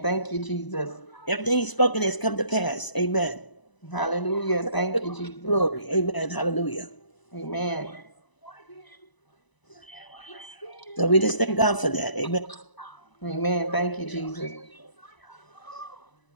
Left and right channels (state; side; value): late; right; 1.0 ms